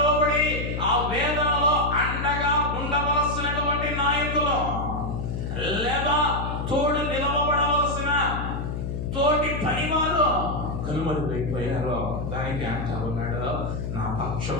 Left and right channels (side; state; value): left; noise; hum, 4 dB below the sound